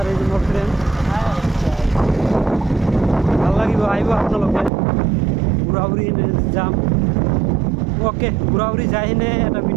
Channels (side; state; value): left; drops out; at 4.7 s